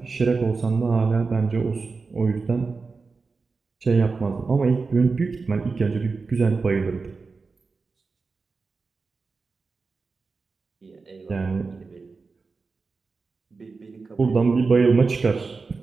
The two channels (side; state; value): left; quieter; 4.4 dB